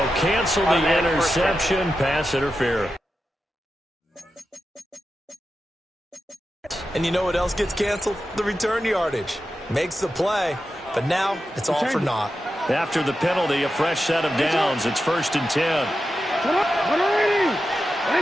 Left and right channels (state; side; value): normal; both; correlation 0.90